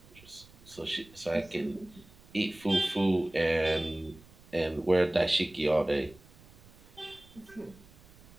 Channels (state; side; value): noise; right; rumble, 24 dB below the sound